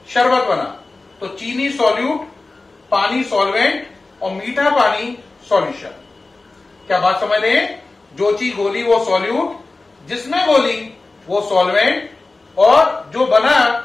शरबत बना, तो चीनी सॉल्यूट, पानी सॉल्वेंट और मीठा पानी सॉल्यूशन। क्या बात समझ रहे हैं? जो चीज घोली वो सॉल्यूट, जिसमें घोली वो सॉल्वेंट, और जो बना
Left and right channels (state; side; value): quieter; right; 3.4 dB